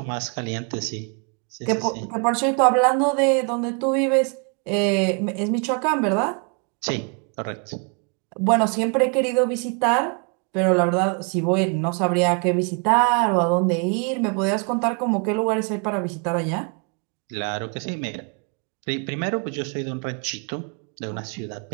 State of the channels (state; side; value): quieter; left; 37.6 dB